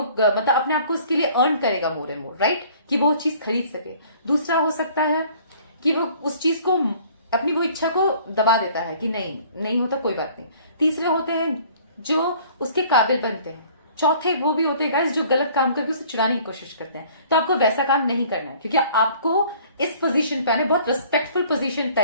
मतलब अपने आप को उसके लिए अर्न करेगा मोर एंड मोर, राइट? कि वो चीज खरीद सके। दूसरा हो सकता है कि वो उस चीज को, अपनी वो इच्छा को दबा देता है कि नहीं होता, कोई बात नहीं। तीसरे होते हैं जो उसके काबिल बनते हैं। चौथे वो भी होते हैं गाइस जो गलत काम करके उसे चुराने की कोशिश करते हैं। तो आपको वैसा काम नहीं करना है, क्योंकि आपको इस पोजीशन पे आने, बहुत रिस्पेक्टफुल पोजीशन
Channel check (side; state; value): both; inverted; correlation -0.53